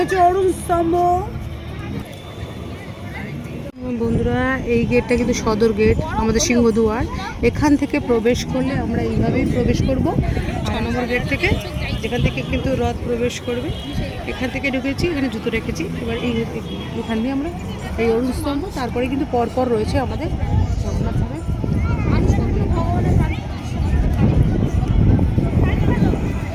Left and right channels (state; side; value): identical; both; correlation 1.00